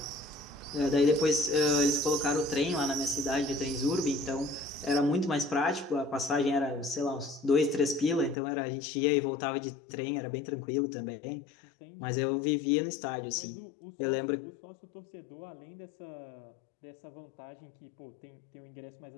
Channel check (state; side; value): drops out; right; at 8.3 s